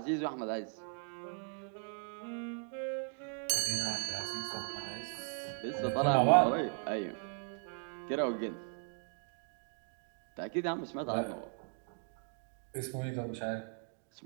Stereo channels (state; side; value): silent; left; 53 dB below the other